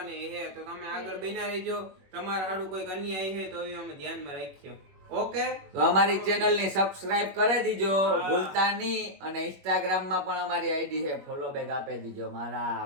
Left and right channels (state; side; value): late; left; 21 ms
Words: છે. તો તમે આગળ બના રહેજો. તમારા હાડું કોઈ અન્યાય છે તો હવે અમે ધ્યાનમાં રાખ્યો. ઓકે તો અમારી ચેનલ ની સબસ્ક્રાઇબ કરી દીજો ભૂલતા નહીં. અને ઇન્સ્ટાગ્રામ માં પણ અમારી આઈડી છે ફોલો બેક આપી દીજો. મારા